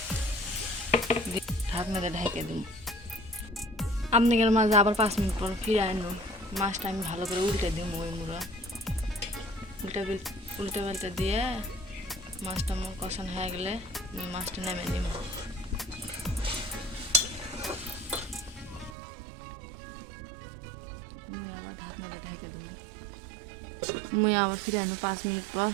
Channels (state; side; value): drops out; left; at 18.9 s